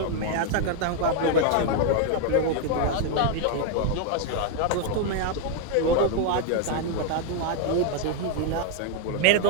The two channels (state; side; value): different; both; correlation 0.01